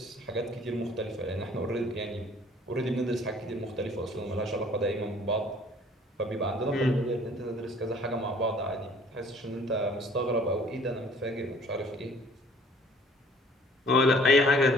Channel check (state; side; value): normal; both; correlation 0.54